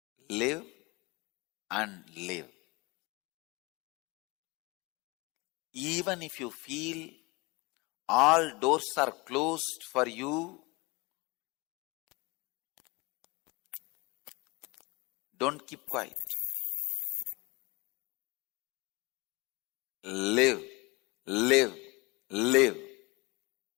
live, and live. Even if you feel all doors are closed for you, don't keep quiet. Live, live, live.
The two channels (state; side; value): quieter; right; 25.3 dB